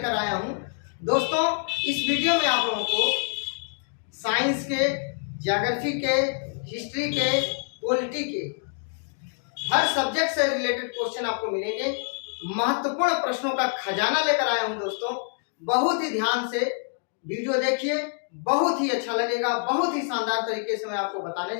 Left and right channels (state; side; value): silent; right; 61 dB below the other